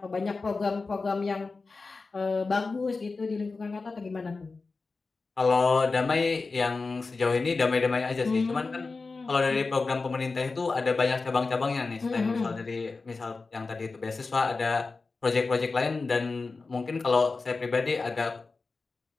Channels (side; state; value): right; quieter; 4.0 dB